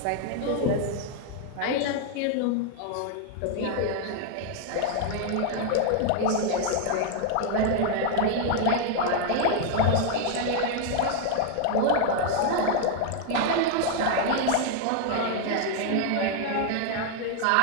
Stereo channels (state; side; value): different; both; correlation 0.01